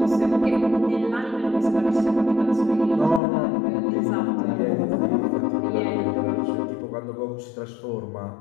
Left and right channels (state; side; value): drops out; right; at 3.2 s